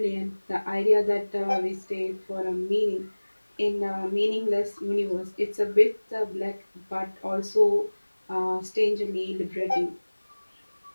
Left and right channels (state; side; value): inverted; both; correlation -1.00